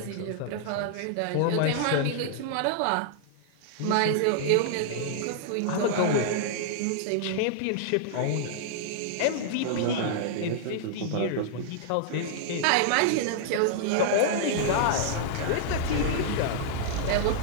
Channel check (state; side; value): different; both; correlation -0.01